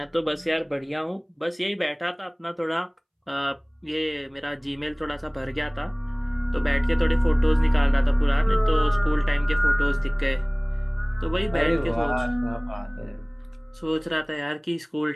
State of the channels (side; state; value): both; identical; correlation 1.00